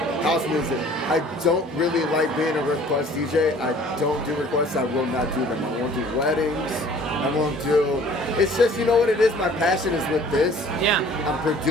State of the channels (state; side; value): normal; both; correlation 0.51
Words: House music. I don't really like being a request DJ. I don't do requests. I will not do them. I won't do weddings. I won't do... It's just, you know what it is? My passion is with this. Yeah. I'm